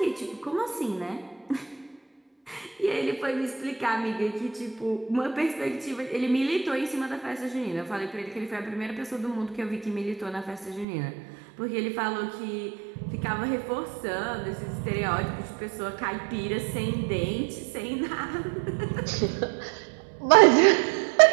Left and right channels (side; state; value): left; drops out; at 10.9 s